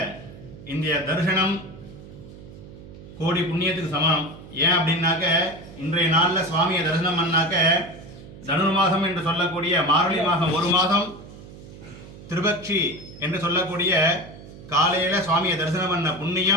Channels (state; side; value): noise; right; hum, 17 dB below the sound